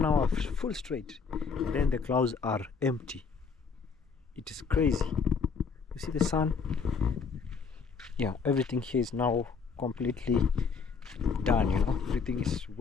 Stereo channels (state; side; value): quieter; right; 5.4 dB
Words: hour full straight, and then the clouds are empty. It is crazy. You see the sun? Yeah, everything here is now completely done, you know. Everything is